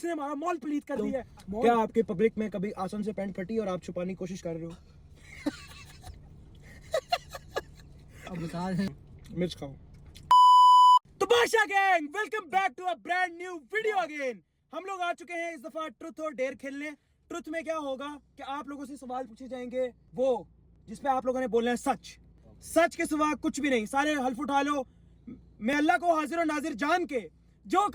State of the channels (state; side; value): identical; both; correlation 1.00